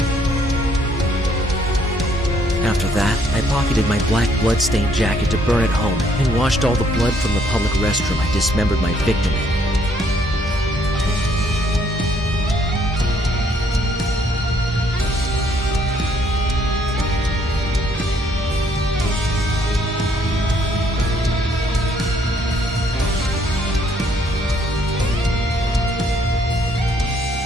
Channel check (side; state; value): both; normal; correlation 0.66